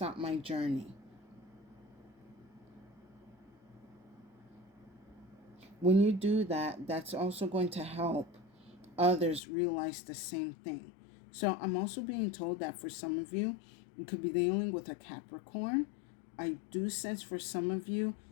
my journey. When you do that, that's also going to help others realize the same thing. So I'm also being told that for some of you, you could be dealing with a Capricorn. I do sense for some of you,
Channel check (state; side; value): drops out; right; at 9.4 s